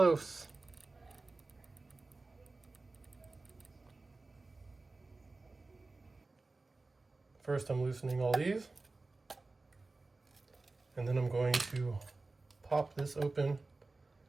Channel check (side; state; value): left; quieter; 3.4 dB